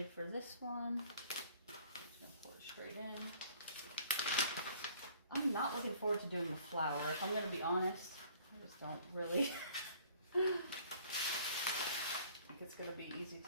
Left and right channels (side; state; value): both; inverted; correlation -0.55